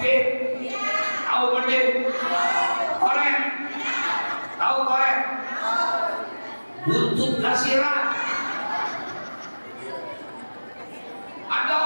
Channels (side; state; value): both; inverted; correlation -1.00